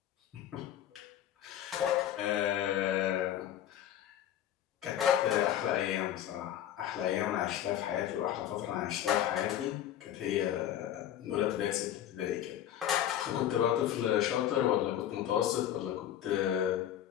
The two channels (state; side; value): quieter; right; 11.2 dB